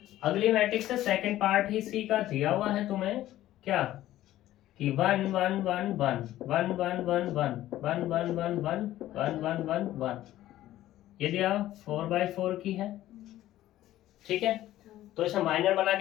अगली मैट्रिक्स है, सेकंड पार्ट ही सी का दिया हुआ है तुम्हें, क्या कि 1 1 1 1 1 1 1 1 1 1 1 1 1 1 1 1, ये दिया 4/4 की है, ठीक है। तो इसे माइनर बना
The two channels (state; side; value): quieter; right; 14.2 dB